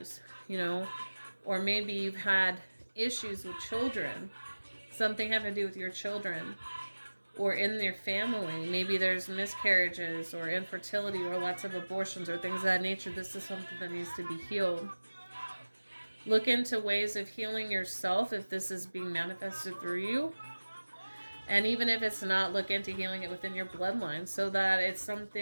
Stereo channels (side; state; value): both; inverted; correlation -1.00